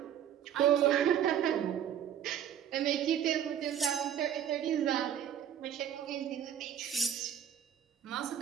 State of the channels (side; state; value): left; quieter; 9.6 dB